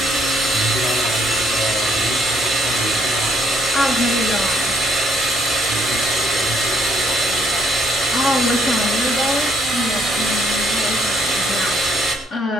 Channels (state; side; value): normal; both; correlation 0.68